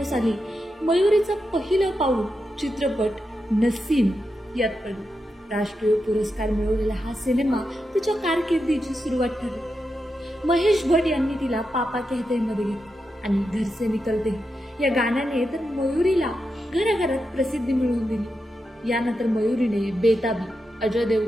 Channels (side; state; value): both; normal; correlation 0.87